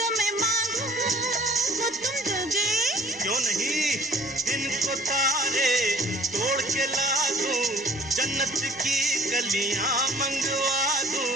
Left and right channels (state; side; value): normal; both; correlation 0.53